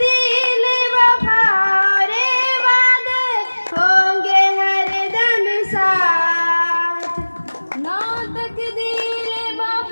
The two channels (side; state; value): both; inverted; correlation -1.00